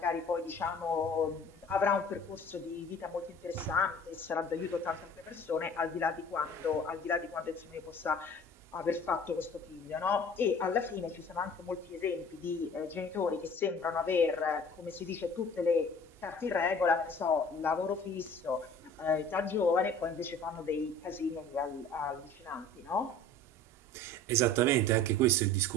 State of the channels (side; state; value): both; normal; correlation 0.46